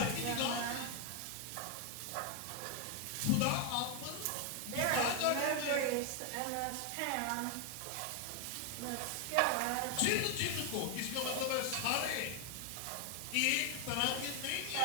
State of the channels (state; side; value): different; both; correlation 0.00